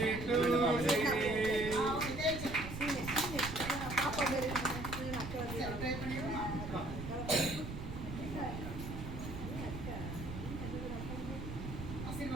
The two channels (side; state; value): right; noise; rumble, 7 dB below the sound